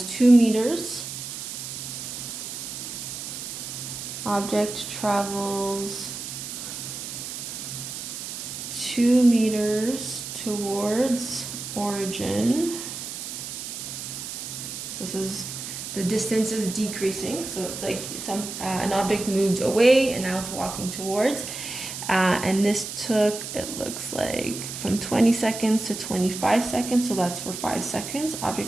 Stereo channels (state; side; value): noise; right; hiss, 7 dB below the sound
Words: 2 meters. Object travels 2 meters towards origin. So this is, the distance is decreasing, so it's like an object moved away and now it's walking towards. And this took, it looks like, from 20 seconds to 25 seconds, so that's for 5 seconds.